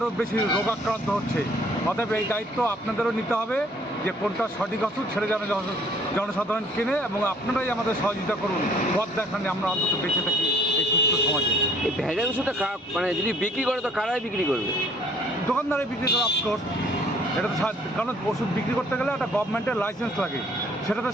বেশি রোগাক্রান্ত হচ্ছে। অতএব এই দায়িত্ব আপনাদেরও নিতে হবে যে কোনটা সঠিক ওষুধ ছেড়ে যেন জনসাধারণ কেনে, এবং আপনারাই আমাদের সহযোগিতা করুন, পথ দেখান, আমরা অন্তত বেঁচে থাকি এই সুস্থ সমাজে। এই ভেজাল ওষুধটা মানে যদি বিক্রি করে তো কারাই বিক্রি করবে? দোকানদারে বিক্রি করে অফকোর্স। এটা তো কারণ ওষুধ বিক্রি করতে গেলে একটা গভর্নমেন্টের লাইসেন্স লাগে, সেটা তো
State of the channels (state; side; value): normal; both; correlation 0.58